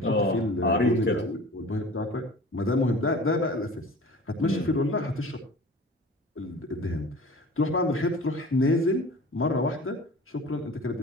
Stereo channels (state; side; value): normal; both; correlation 0.41